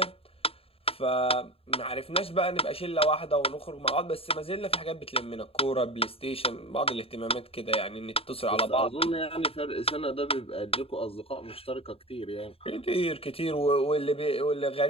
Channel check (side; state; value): right; late; 0.28 ms